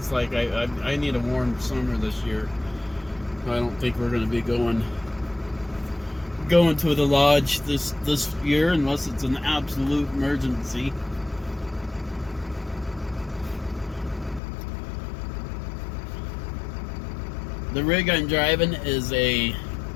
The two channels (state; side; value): drops out; right; at 14.4 s